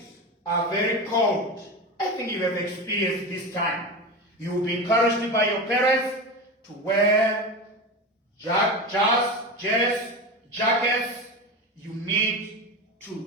are very cold. I think you have experienced this time. You will be encouraged by your parents to wear jackets. You need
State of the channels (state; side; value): normal; both; correlation 0.23